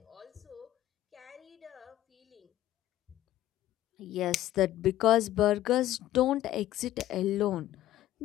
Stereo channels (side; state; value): right; quieter; 14.0 dB